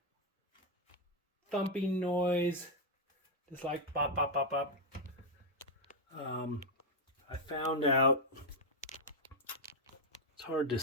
thumping noise, just like pop, pop, pop, pop. I found out, it's hard to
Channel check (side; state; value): both; normal; correlation 0.00